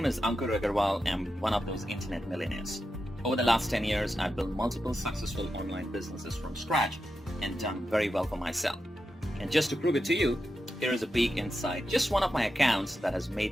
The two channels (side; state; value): both; normal; correlation 0.89